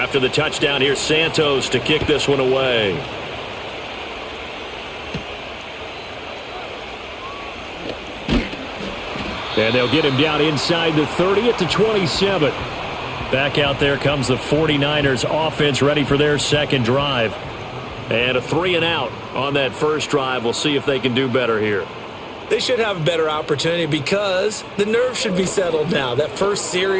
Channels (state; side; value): identical; both; correlation 1.00